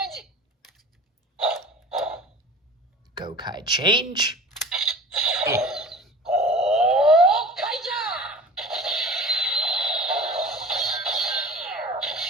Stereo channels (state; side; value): normal; both; correlation 0.39